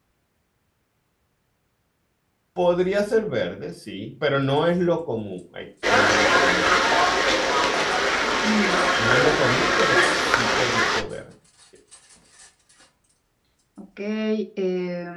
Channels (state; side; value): identical; both; correlation 1.00